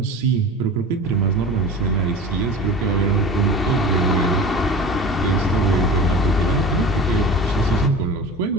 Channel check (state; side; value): normal; both; correlation 0.35